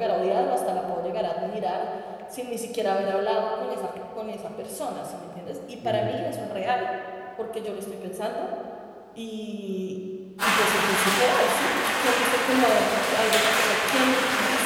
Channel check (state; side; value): identical; both; correlation 1.00